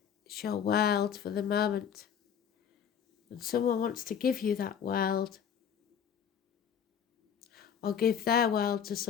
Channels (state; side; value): quieter; right; 8.1 dB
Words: it's your world for the moment. And someone wants to give you that world, or give their world to